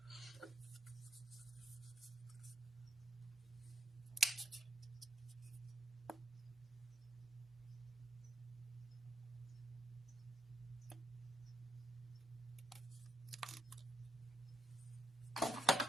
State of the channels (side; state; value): both; normal; correlation 0.75